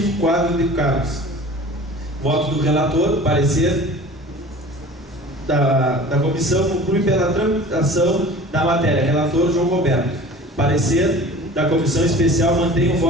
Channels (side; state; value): both; normal; correlation 0.42